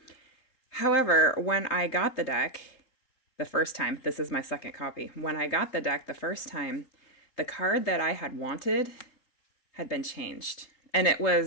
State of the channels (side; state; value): right; late; 3.3 ms